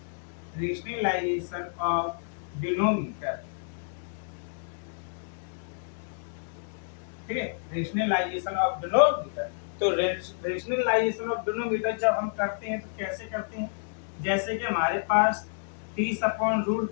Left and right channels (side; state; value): right; silent; digital silence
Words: rationalisation of denominator. ठीक है, रेशनलाइजेशन ऑफ डिनोमीटर। तो रेशनलाइजेशन ऑफ डिनोमीटर जब हम करते हैं तो कैसे करते हैं, जैसे कि हमारे पास